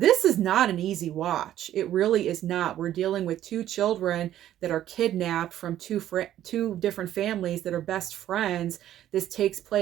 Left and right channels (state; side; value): quieter; left; 12.2 dB